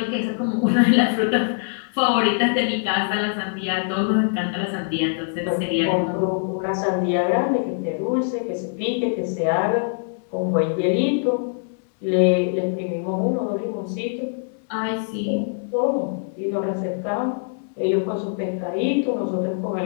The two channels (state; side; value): silent; right; digital silence